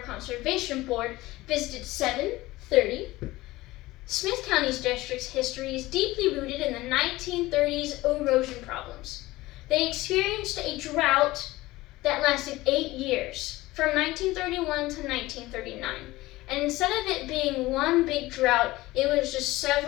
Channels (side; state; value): right; quieter; 18.7 dB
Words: Conservation Board visited 730, Smith County's district's history is deeply rooted in the 1930s erosion problems. They experienced a drought that lasted 8 years, from 1931 to 1939. And instead of it being one big drought, it was just